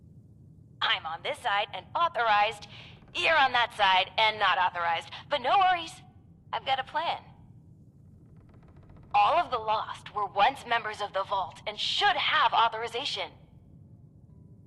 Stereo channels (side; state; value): both; identical; correlation 1.00